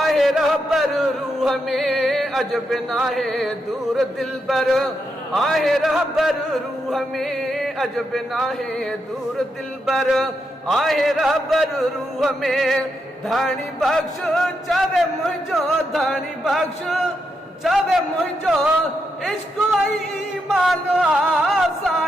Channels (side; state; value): both; normal; correlation 0.83